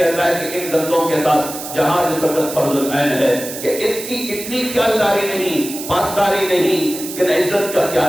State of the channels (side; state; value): right; noise; hiss, 9 dB below the sound